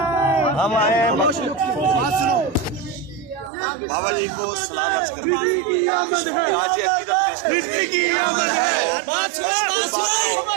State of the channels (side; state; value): left; drops out; at 3.5 s